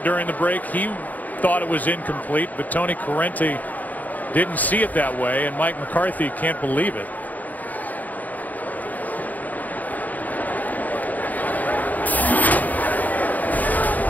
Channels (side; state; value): right; late; 0.079 ms